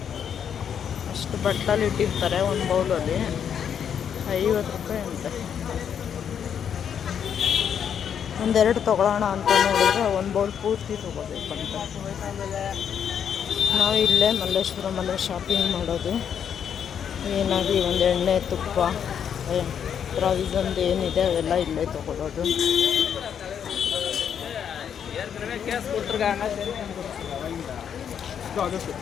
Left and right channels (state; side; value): quieter; right; 8.2 dB